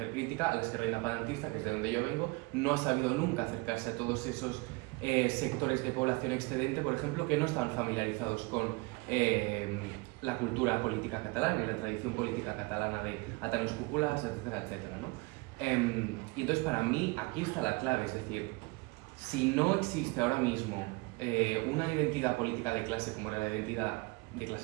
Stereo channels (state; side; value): quieter; left; 26.2 dB